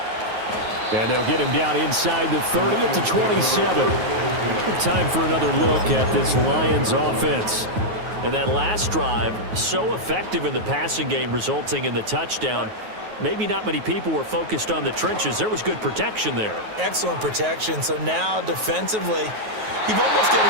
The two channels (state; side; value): late; left; 9.4 ms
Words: And they'll get him down inside the 30 at the 27. Time for another look at this Lions offense. And that last drive, so effective in the passing game, resulting in the touchdown. Maybe not many people were focused on the trenches. There was good protection there. Excellent protection. So now defensively, you've almost got